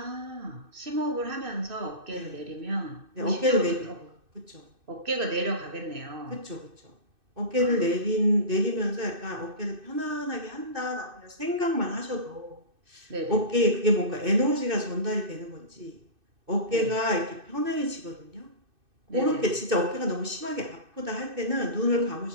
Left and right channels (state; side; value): late; left; 2.6 ms